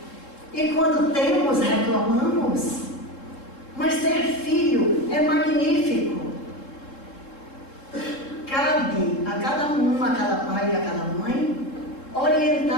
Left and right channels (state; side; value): late; right; 3.7 ms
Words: E quando temos, reclamamos. Mas ter filho é magnífico. Cabe a cada um, a cada pai e a cada mãe,